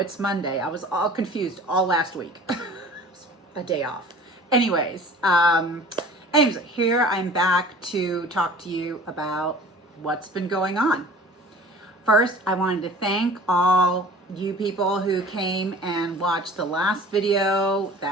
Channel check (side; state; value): both; normal; correlation 0.45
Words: Monday. I was all confused all last week. A day off. Anyways, here I'm back to talk to you about what's been going on. First, I wanted to thank all you people who came and watched the last video.